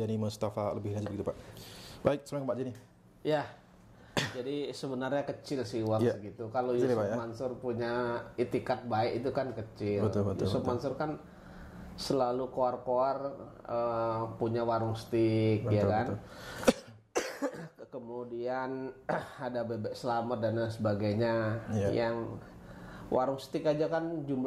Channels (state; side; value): identical; both; correlation 1.00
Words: Mustafa lebih lanjut gitu Pak. Baik, assalamualaikum Pak Zaini. Ya. Jadi sebenarnya kecil sih uang segitu. Kalau Yusuf Mansur punya itikat baik itu kan kecil. Yusuf Mansur kan selalu koar-koar punya warung steak, ya kan. Kemudian ada bebek selamat dan lain sebagainya. Yang warung steak aja kan